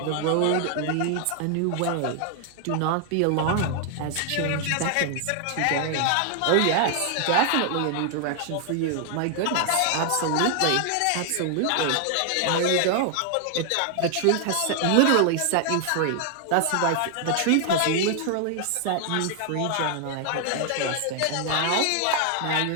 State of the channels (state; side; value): different; both; correlation 0.00